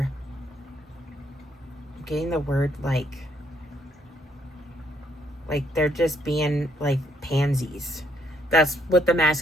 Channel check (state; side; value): normal; both; correlation 0.70